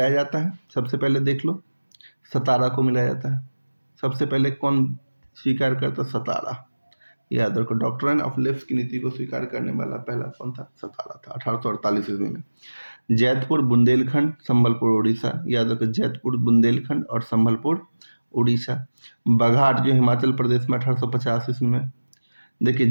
जाता है। सबसे पहले देख लो, सतारा को मिलाया जाता है। सबसे पहले कौन स्वीकार करता? सतारा। याद रखो, डॉक्ट्राइन ऑफ लेप्स की नीति को स्वीकार करने वाला पहला कौन था? सतारा था 1848 ईस्वी में। जैतपुर, बुंदेलखंड, संबलपुर, उड़ीसा। याद रखो, जैतपुर, बुंदेलखंड और संबलपुर, उड़ीसा। बघाट जो हिमाचल प्रदेश में 1850 ईस्वी में। देखिए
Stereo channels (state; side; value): inverted; both; correlation -1.00